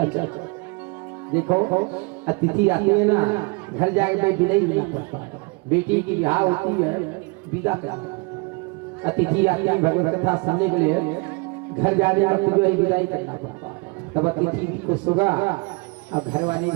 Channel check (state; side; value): quieter; left; 29.6 dB